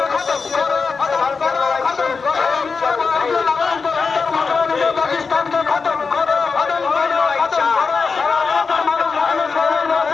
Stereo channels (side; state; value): right; quieter; 4.9 dB